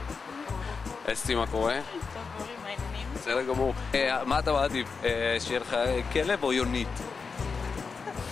אסתי, מה קורה? טוב, אורי, מה העניינים? בסדר גמור. מה אתה מעדיף? שיהיה לך כלב או יונית?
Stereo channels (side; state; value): right; quieter; 5.1 dB